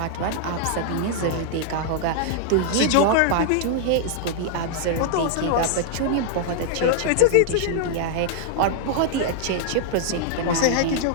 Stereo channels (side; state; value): both; different; correlation -0.01